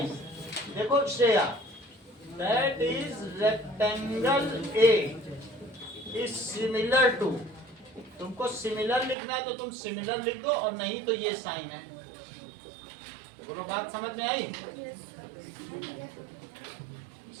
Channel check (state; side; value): drops out; left; at 9.2 s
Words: देखो Shreya, that is rectangle A is similar to, तुमको सिमिलर लिखना है तो तुम सिमिलर लिख दो, और नहीं तो ये साइन है। बोलो, बात समझ में आई?